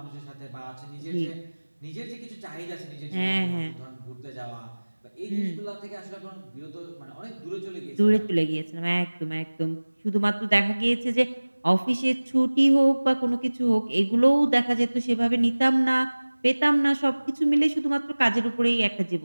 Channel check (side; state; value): both; inverted; correlation -1.00